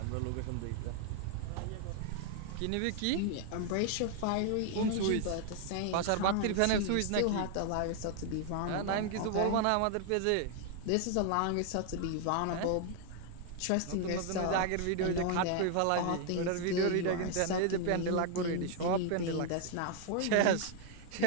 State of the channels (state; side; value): different; both; correlation 0.00